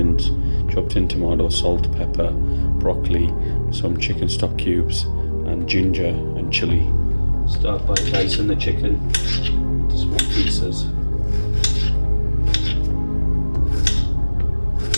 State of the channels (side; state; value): both; inverted; correlation -1.00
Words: chopped in tomato, salt, pepper, broccoli, some chicken stock cubes, and ginger and chilli. Start by dicing the chicken into small pieces.